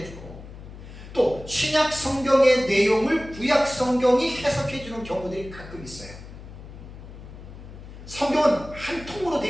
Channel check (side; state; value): left; noise; hum, 15 dB below the sound